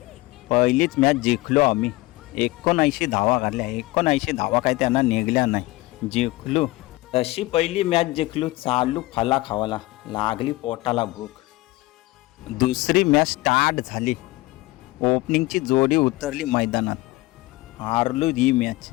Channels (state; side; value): quieter; right; 20.3 dB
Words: पहिलीच मॅच जिंकलो आम्ही. 79 धावा काढल्या. 79 धावा काय त्यांना निघल्या नाही. जिंकलो. तशी पहिली मॅच जिंकलो. चालू फला खावाला लागली पोटाला भूक. दुसरी मॅच स्टार्ट झाली. ओपनिंगची जोडी उतरली मैदानात. हारलो ही मॅच.